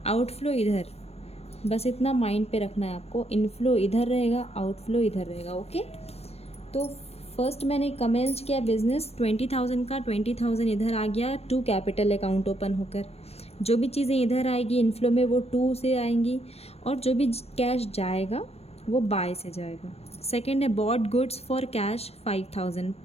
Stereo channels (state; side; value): late; right; 0.30 ms